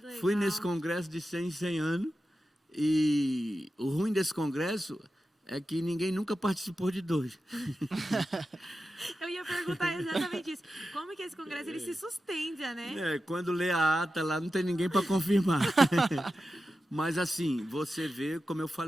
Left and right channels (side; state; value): both; normal; correlation 0.92